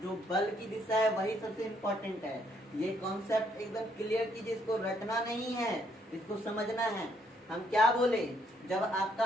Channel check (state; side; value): normal; both; correlation 0.70